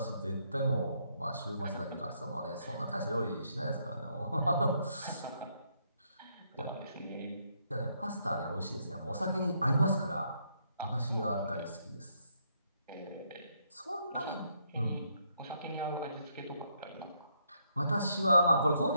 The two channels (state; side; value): inverted; both; correlation -0.74